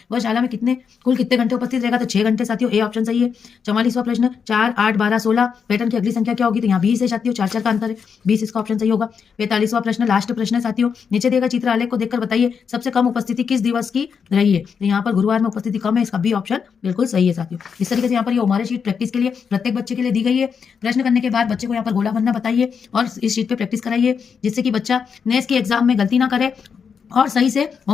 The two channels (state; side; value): quieter; right; 6.4 dB